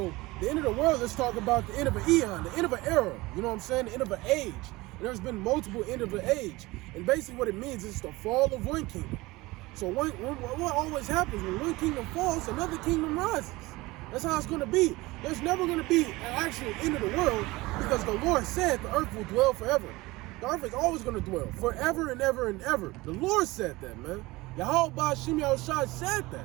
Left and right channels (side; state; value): left; quieter; 21.0 dB